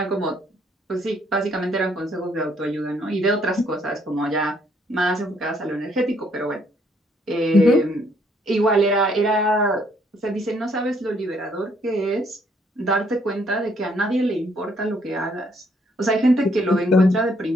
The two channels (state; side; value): normal; both; correlation 0.68